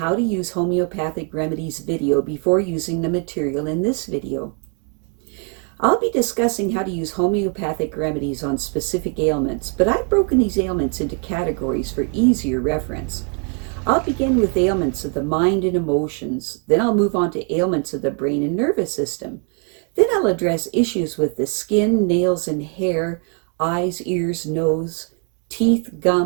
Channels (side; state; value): left; quieter; 39.4 dB